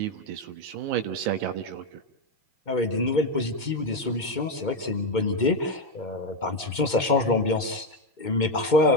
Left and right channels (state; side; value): late; right; 2.2 ms